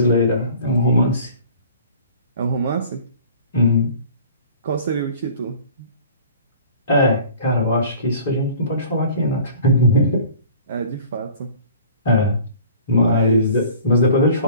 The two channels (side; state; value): both; inverted; correlation -0.47